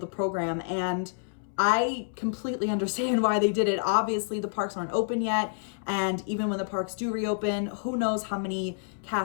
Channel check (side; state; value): right; silent; 59 dB below the other